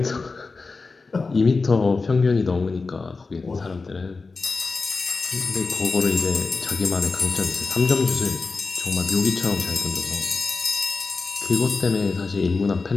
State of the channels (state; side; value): quieter; right; 4.1 dB